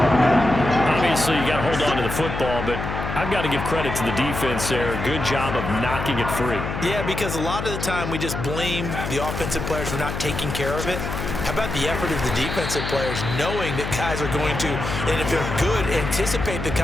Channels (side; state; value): left; noise; hum, 5 dB below the sound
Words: Obviously, you got to hold on to the football, but I've got to give credit to the defense there. Good job of knocking it free. Yeah, because a lot of the time we just blame the offensive players for not taking care of it. How about the effort of the defensive players knowing that guys are going to, and if they're good, anticipate the